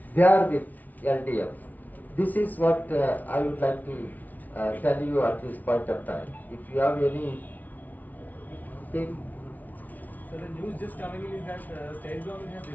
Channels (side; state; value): right; late; 0.078 ms